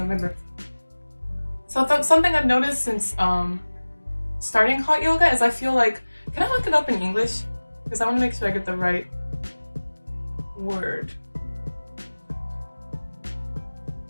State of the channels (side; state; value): both; inverted; correlation -1.00